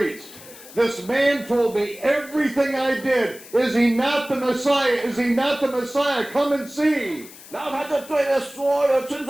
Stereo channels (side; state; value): left; noise; hiss, 18 dB below the sound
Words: This man told me everything I did. Is he not the Messiah? Is he not the Messiah? Come and see. 然后他就对着所有村